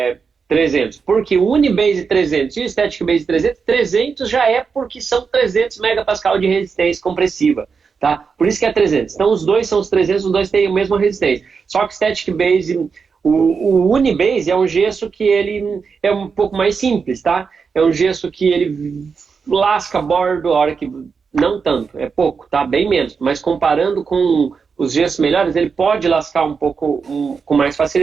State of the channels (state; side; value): quieter; left; 5.5 dB